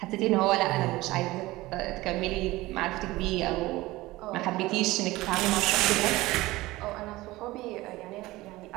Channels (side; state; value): left; quieter; 19.1 dB